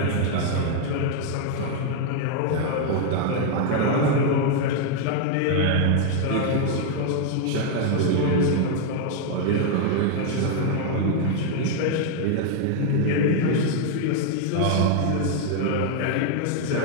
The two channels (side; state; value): both; different; correlation 0.00